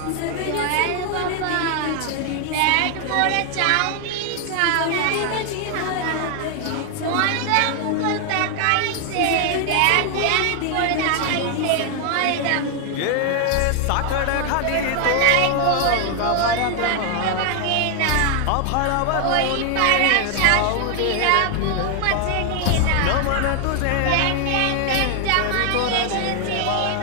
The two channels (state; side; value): different; both; correlation 0.00